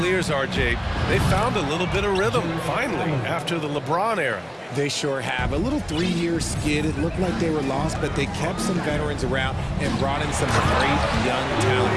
RJ, they found a little bit of rhythm, finally, after the LeBron era. They sure have. A little 3-year skid. It looked like they were lost, but they kept some veterans around and brought in some great young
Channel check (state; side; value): identical; both; correlation 1.00